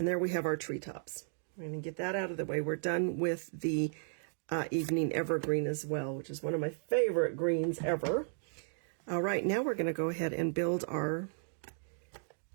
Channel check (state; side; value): silent; left; digital silence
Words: there we have our treetops. We're going to get that out of the way. We're done with the Evening Evergreen as well, which is one of my favorite greens ever. All right, now we're going to go ahead and build our